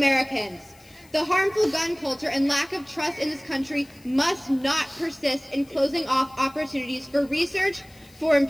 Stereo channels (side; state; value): left; noise; hiss, 27 dB below the sound